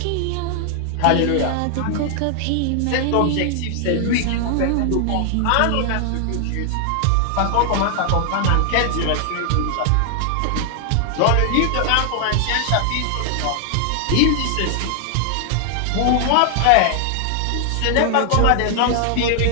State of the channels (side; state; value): both; different; correlation 0.00